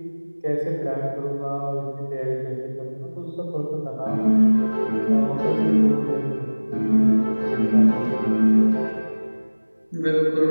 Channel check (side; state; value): both; inverted; correlation -1.00